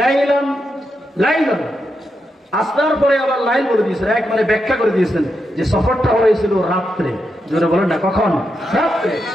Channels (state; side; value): normal; both; correlation 0.85